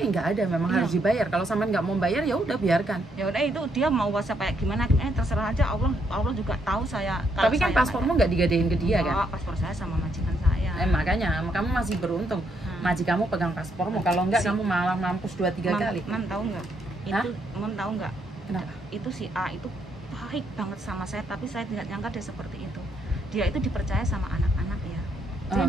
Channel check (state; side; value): normal; both; correlation 0.75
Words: nggak ada, memang harus dibayar. Kalau Samen nggak mau bayar, ya udah biarkan. Ya udah, itu dia mau WhatsApp kayak gimana, terserah aja. Allah juga tahu saya. Tapi kan paspormu nggak digadein ke dia kan? Paspor saya sama majikan saya. Makanya kamu masih beruntung. Majikanmu pegang paspormu. Kalau enggak, kamu malah mampus 2-3 kali. Man tahu nggak? Itu Mon tahu nggak? Kenapa? Itu si A itu baik banget sama saya, tapi saya tidak nyangka dia seperti itu. Dia itu dipercaya sama anak-anak ya. Dia